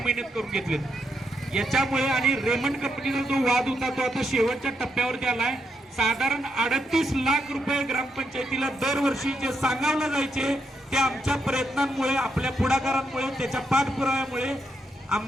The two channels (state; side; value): normal; both; correlation 0.80